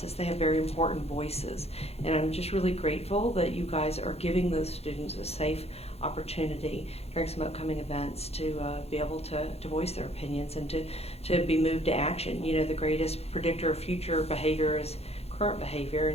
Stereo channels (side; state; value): right; late; 0.30 ms